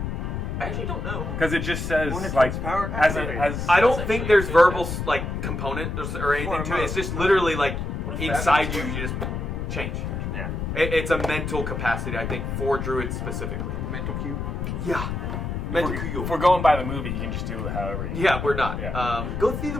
I actually don't know. Because it just says When it like comes power, as activate. I don't That's think actually there's verbal fantastic. like component or anything Or to it. It's emote. just literally like What if inside that you, was- you just change. Yeah. It's a mental capacity, I think, for druids specifically. Mental cube. Yeah. Mental cube. if we're going by the movie, you can just do it however you. Yeah, we're not. Yeah. Go see the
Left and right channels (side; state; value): left; noise; rumble, 4 dB below the sound